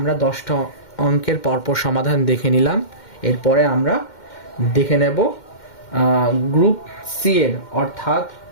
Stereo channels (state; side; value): late; right; 2.1 ms